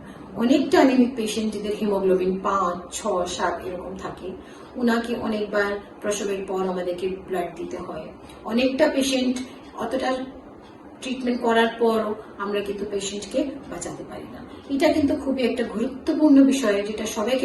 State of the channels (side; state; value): both; identical; correlation 1.00